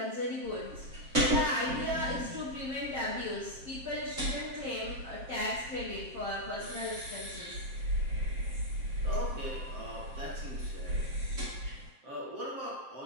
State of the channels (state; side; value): late; left; 7.6 ms